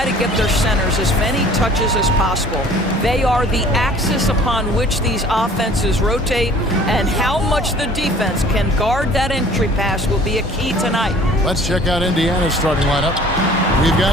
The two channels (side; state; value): both; normal; correlation 0.50